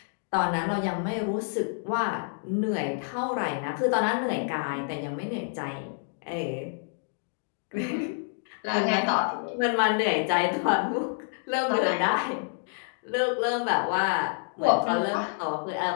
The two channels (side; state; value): right; silent; digital silence